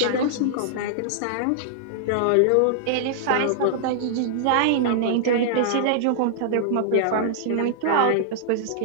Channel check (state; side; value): different; both; correlation -0.01